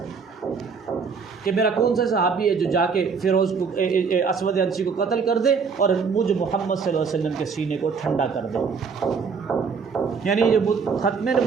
کہ میرا کون سا صحابی ہے جو جا کے فیروز کو اسود عنسی کو قتل کر دے اور مجھ محمد صلی اللہ علیہ وسلم کے سینے کو ٹھنڈا کر دے. یعنی جو ختم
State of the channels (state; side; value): quieter; left; 5.5 dB